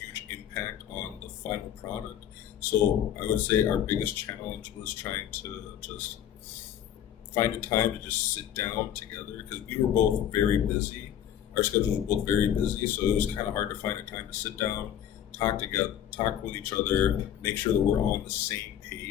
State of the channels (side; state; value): right; quieter; 10.4 dB